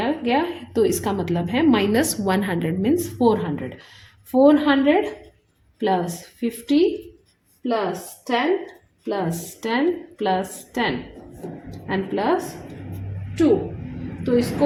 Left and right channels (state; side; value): identical; both; correlation 1.00